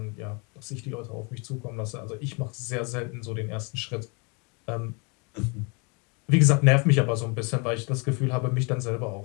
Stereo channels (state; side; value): quieter; right; 32.1 dB